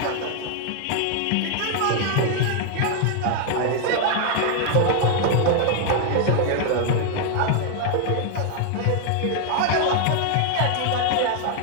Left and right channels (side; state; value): both; different; correlation 0.00